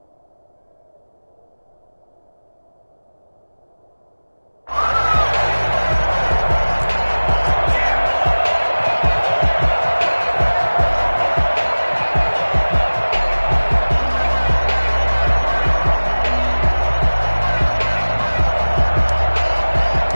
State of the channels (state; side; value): inverted; both; correlation -1.00